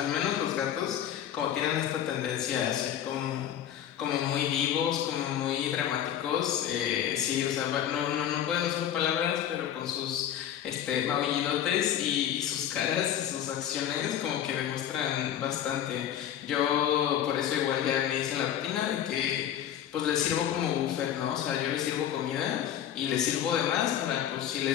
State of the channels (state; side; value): quieter; right; 10.3 dB